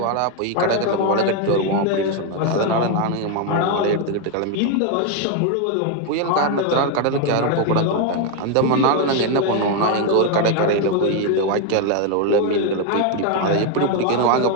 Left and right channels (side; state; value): both; different; correlation 0.01